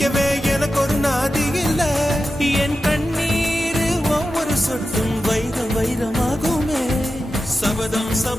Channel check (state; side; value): normal; both; correlation 0.92